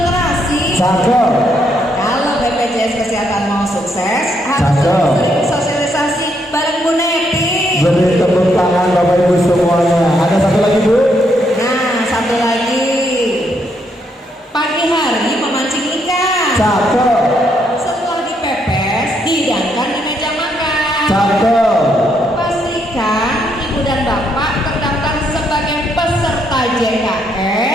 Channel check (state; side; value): normal; both; correlation 0.75